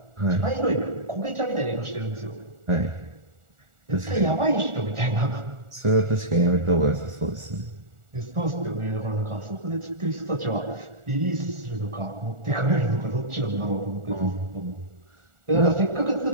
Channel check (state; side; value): late; left; 1.4 ms